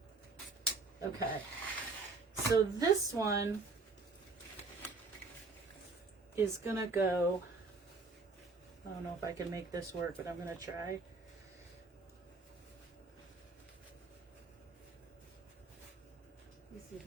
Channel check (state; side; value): quieter; left; 4.0 dB